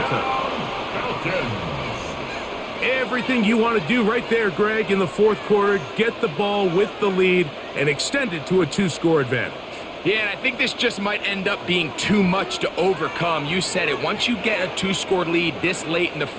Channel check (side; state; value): both; identical; correlation 1.00